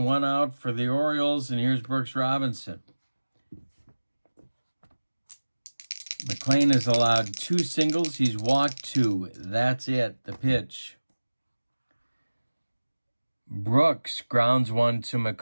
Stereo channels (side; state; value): both; inverted; correlation -1.00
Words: 1 out for the Orioles, and here's Brooks Robinson. McLain has allowed 2 singles. He's walked 2. That's it. The pitch. Brooks grounds 1 to